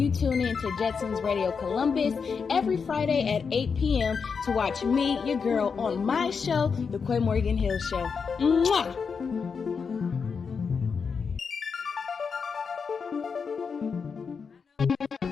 tune in to Jetson's Radio Columbus every Friday at 8 p.m. to watch me, your girl, on my show, The Quinn Morgan Hill Show. Mwah!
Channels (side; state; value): right; quieter; 5.7 dB